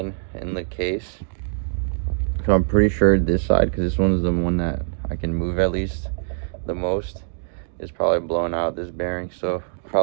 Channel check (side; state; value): left; silent; digital silence